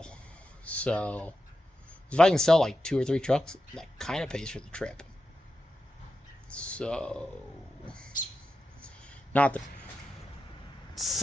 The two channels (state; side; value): normal; both; correlation 0.90